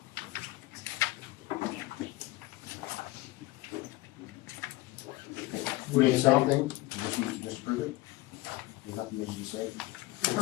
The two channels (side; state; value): right; quieter; 19.4 dB